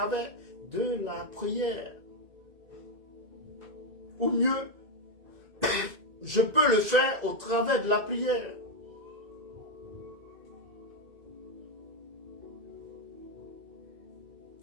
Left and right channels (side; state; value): left; late; 1.9 ms